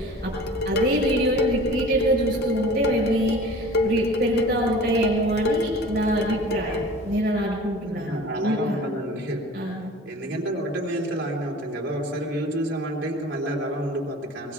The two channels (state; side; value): normal; both; correlation 0.42